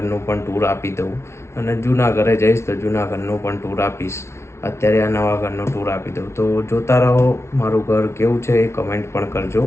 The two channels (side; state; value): right; late; 0.13 ms